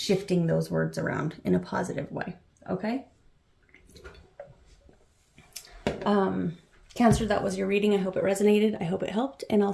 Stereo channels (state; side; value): identical; both; correlation 1.00